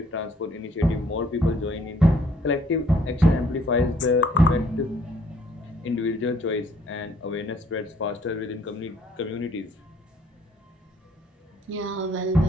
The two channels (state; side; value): normal; both; correlation 0.62